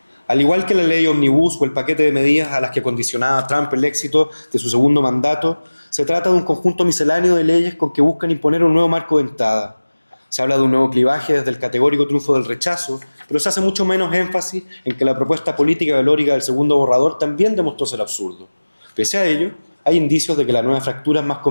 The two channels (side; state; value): both; inverted; correlation -1.00